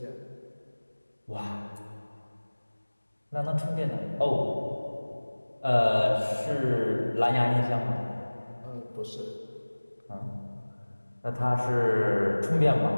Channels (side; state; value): both; inverted; correlation -1.00